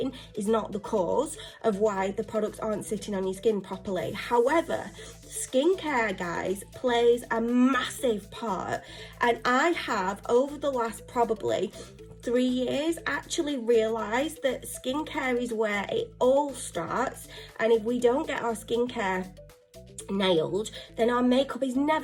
is not the cause of why the products aren't sitting on your skin properly. However, skincare, guys, plays a massive part, and I have, over the last probably 3 years, actually realised that skincare is where it all starts, and if we don't get our skincare nailed, then our makeup is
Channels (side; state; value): both; identical; correlation 1.00